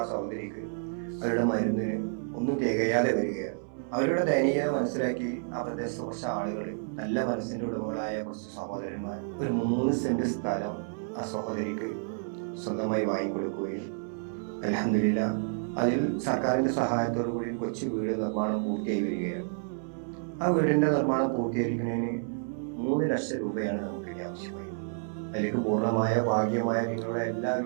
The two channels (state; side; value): silent; left; 58 dB below the other